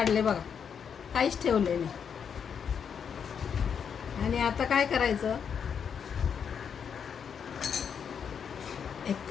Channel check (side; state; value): right; quieter; 7.2 dB